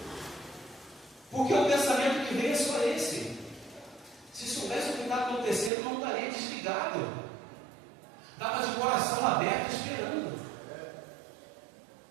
Porque o pensamento que vem é só esse. Se soubesse o que está acontecendo, não estaria desligado. Estava de coração aberto esperando.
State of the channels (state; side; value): drops out; left; at 5.7 s